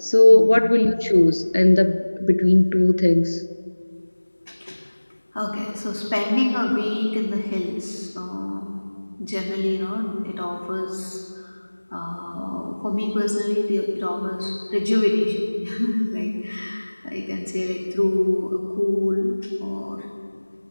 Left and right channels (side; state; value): both; inverted; correlation -1.00